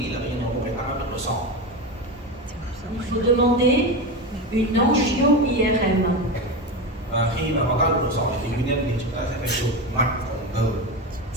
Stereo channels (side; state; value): both; normal; correlation 0.20